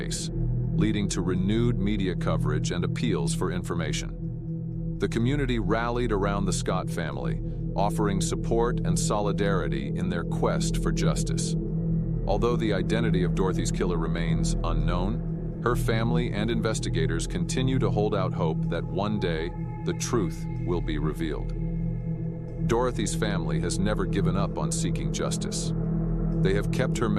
leading to renewed media coverage and appeals for information. The community rallied around the Scott family, offering support and solidarity in their quest for justice. Although the identity of Dorothy's killer remains unknown, her family and investigators continue to hold out hope that one day the truth will be revealed. Dorothy's family has never given up on seeking justice. They have kept her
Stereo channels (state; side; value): identical; both; correlation 1.00